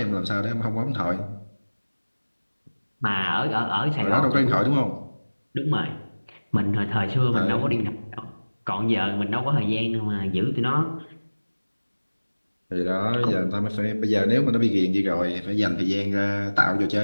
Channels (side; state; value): both; inverted; correlation -1.00